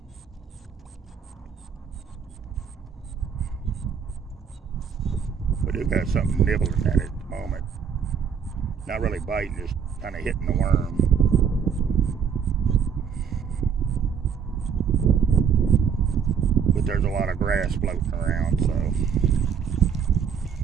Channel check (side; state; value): left; quieter; 7.2 dB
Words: We do got something nibbling at it at the moment. Not really biting, just kind of hitting the worm. But there's a lot of grass floating around, so